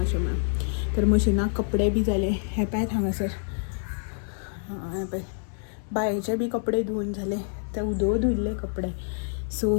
अशें म्हणून. तर मशिनाक कपडे बी जाले. हे पळयात हांगासर, हें पळय बायेचे बी कपडे धुवन जाले. ते धुयल्ले कपडे. सो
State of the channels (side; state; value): right; silent; digital silence